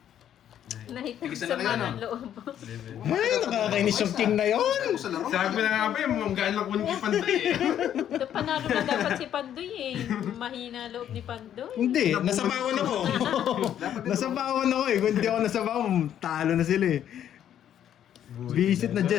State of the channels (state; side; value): quieter; right; 10.3 dB